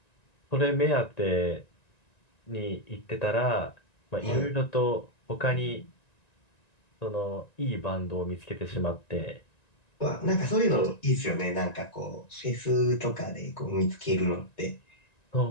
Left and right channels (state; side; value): late; right; 1.9 ms